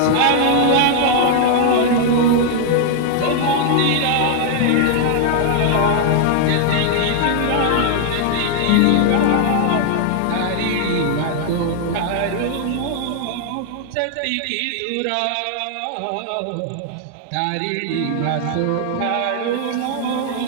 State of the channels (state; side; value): different; both; correlation 0.00